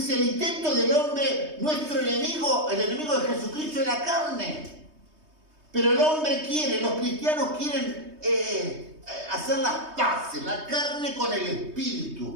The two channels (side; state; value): left; late; 3.2 ms